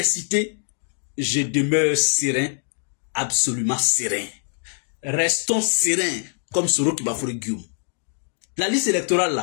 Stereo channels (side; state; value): right; silent; 63 dB below the other